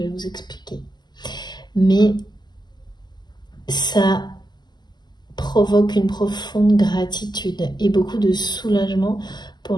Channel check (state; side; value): late; right; 0.21 ms